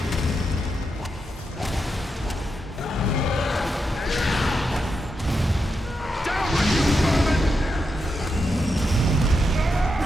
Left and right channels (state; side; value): normal; both; correlation 0.85